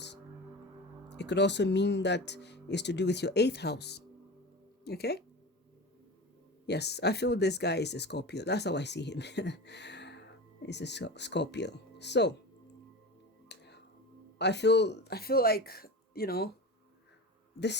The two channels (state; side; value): normal; both; correlation 0.29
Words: It could also mean that it's to do with your 8th house. Okay, yes, I feel this guy is a Scorpio. That's how I see him. He's a Scorpio. So I feel like,